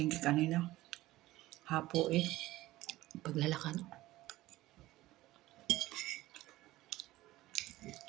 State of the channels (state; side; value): quieter; left; 17.1 dB